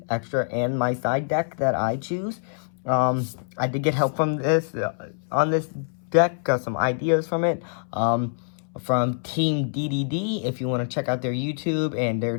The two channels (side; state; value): right; silent; 62 dB below the other